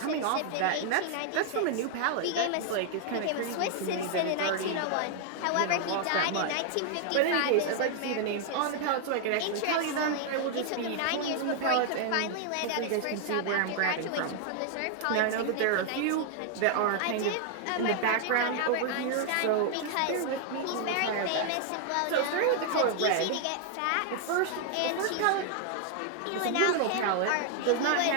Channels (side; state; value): both; different; correlation 0.00